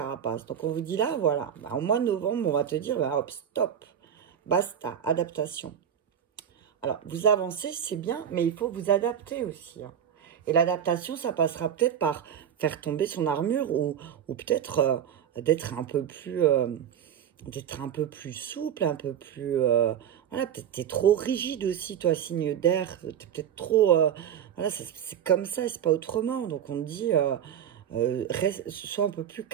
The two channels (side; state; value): left; quieter; 9.1 dB